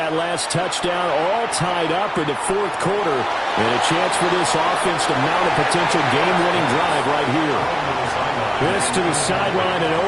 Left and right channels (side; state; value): both; identical; correlation 1.00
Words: last touchdown, all tied up in the fourth quarter. And a chance for this offense to mount a potential game-winning drive right here. This to the sideline and